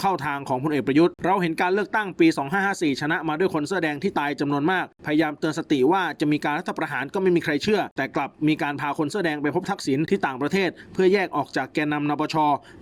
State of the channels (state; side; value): identical; both; correlation 1.00